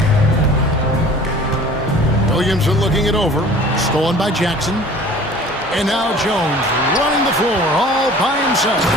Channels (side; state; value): both; normal; correlation 0.46